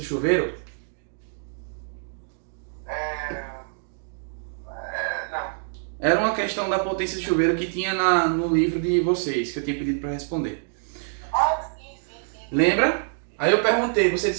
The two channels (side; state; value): left; silent; digital silence